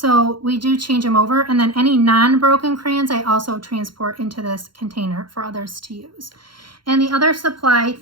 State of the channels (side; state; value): left; late; 0.73 ms